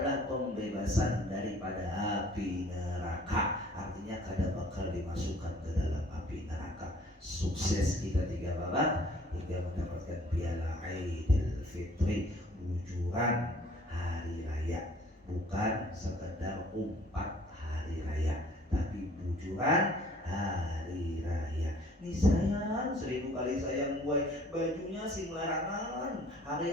pembebasan daripada api neraka. Artinya kada bakal dimasukkan ke dalam api neraka. Sukses kita 3 babak hingga mendapatkan piala Aidil Fitri, bujuran hari raya. Bukan sekedar umpat hari raya, tapi bujuran hari raya. Nih sayang, 1000 kali sayang gue, bajunya sing larangan, hari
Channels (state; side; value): normal; both; correlation 0.55